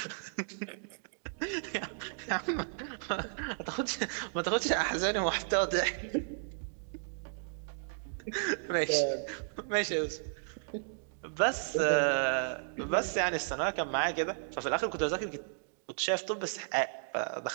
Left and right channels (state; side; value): silent; left; digital silence